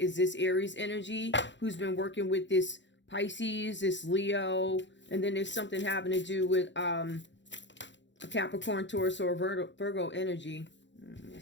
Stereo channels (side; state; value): right; late; 0.53 ms